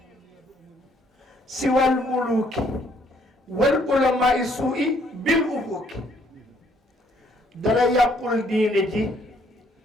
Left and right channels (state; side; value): normal; both; correlation 0.66